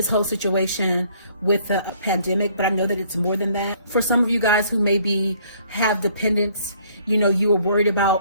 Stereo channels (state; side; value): inverted; both; correlation -0.62